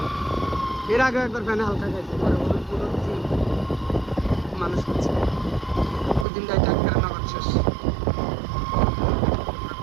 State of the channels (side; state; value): left; drops out; at 6.2 s